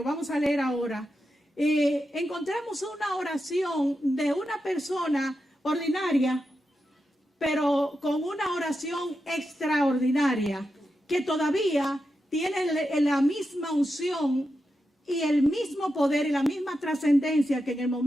vamos a leer ahora, encontramos una oración de una persona ordinaria, pero con una oración extraordinaria, que todavía tiene la misma unción y el mismo poder y la misma trascendencia que en el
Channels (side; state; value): both; normal; correlation 0.88